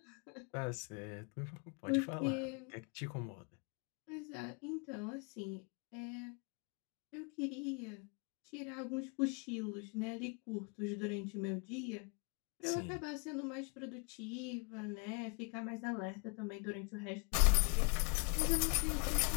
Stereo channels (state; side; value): quieter; right; 34.2 dB